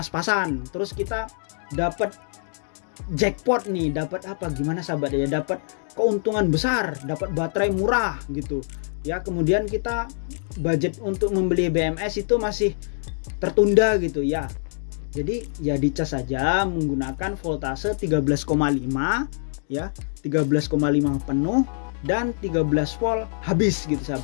terus kita dapat jackpot nih, dapat apa gimana sahabat ya, dapat keuntungan besar, dapat baterai murah gitu ya, kemudian kita budget untuk membeli BMS itu masih tertunda gitu ya, jadi ya dicas saja menggunakan voltase 13,5 ya, 13,5 penuh dan 13 volt habis gitu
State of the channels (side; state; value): right; silent; digital silence